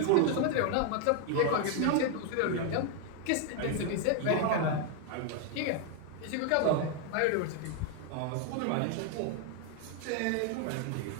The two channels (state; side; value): different; both; correlation 0.01